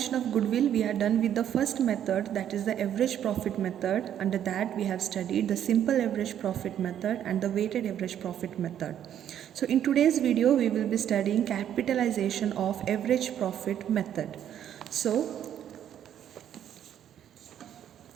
of goodwill, we are done with the first method, that is the average profit method. Under that, we have studied the simple average profit method and the weighted average profit method. So in today's video, we will be studying capitalization of average profit method. So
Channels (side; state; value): left; quieter; 10.1 dB